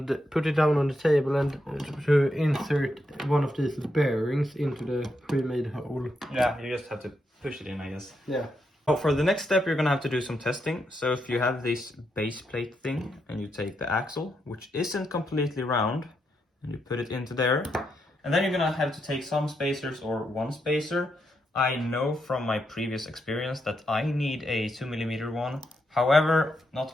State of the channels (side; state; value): both; normal; correlation 0.82